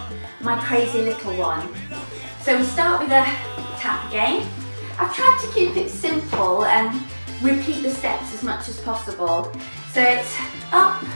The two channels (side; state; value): both; inverted; correlation -1.00